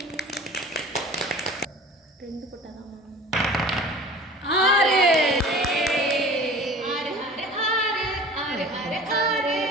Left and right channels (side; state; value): both; normal; correlation 0.42